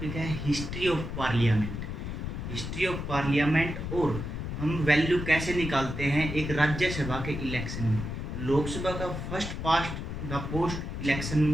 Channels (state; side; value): noise; left; rumble, 5 dB below the sound